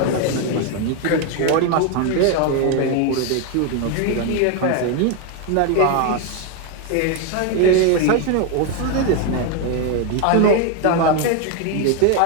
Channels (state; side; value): different; both; correlation 0.01